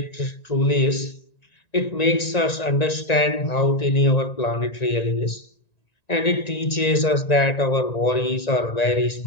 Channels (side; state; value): right; late; 1.9 ms